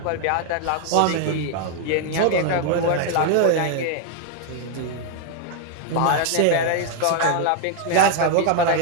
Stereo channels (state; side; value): different; both; correlation 0.00